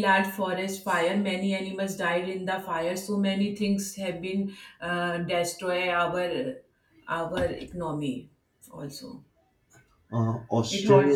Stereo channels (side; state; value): both; identical; correlation 1.00